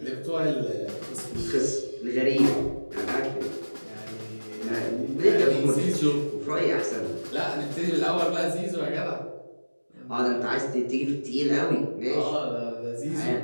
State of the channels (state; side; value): inverted; both; correlation -1.00